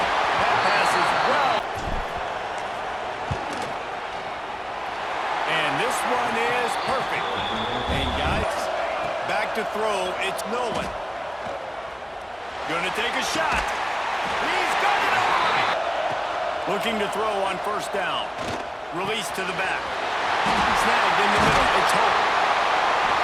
That pass is well. And this one is perfect. And guys, back to throw, it's Nolan. Gonna take a shot. He's got it on. Looking to throw on first down. Release to the back. Snagged in the middle. It's Hope.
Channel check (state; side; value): identical; both; correlation 1.00